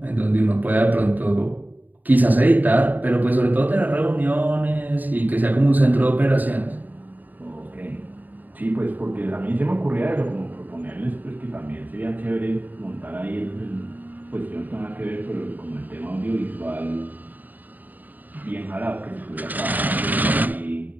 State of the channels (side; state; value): left; late; 0.084 ms